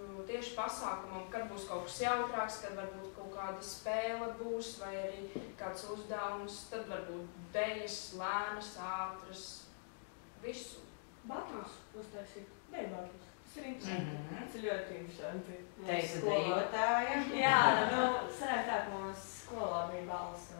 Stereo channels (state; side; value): silent; right; digital silence